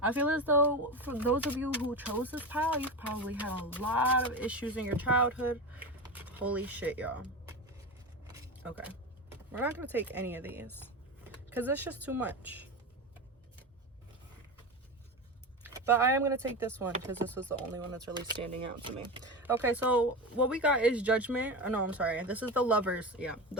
I feel as though for those of you who chose this pile, you've probably had a lot of issues in your childhood. Holy shit, y'all. Okay, we're not gonna take any of these because it's just too much. But I am going to take this one because this was the only one that's really standing out to me. Okay, so what we got is Judgment. Oh, no, I'm sorry. This is the Lovers. Yeah,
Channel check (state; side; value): normal; both; correlation 0.22